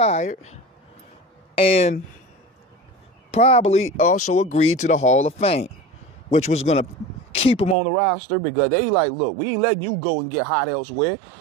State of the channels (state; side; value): drops out; left; at 7.8 s